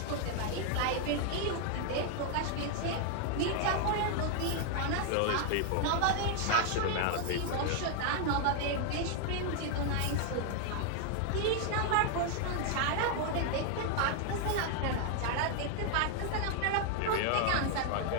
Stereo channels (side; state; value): both; different; correlation 0.00